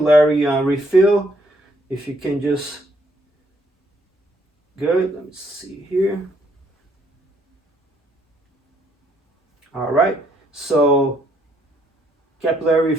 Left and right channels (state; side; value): normal; both; correlation 0.69